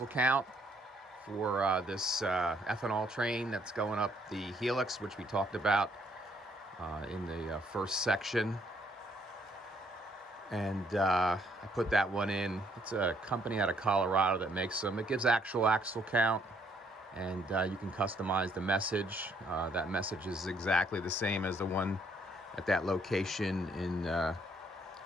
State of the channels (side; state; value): both; normal; correlation 0.68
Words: count for this ethanol train that's going up the Helix, which we talked about in the first section. And I put that one in. It's a company out of Colorado that makes them. It gives actual axle count, and you can customize the message. That message is exactly the same as the one at that location in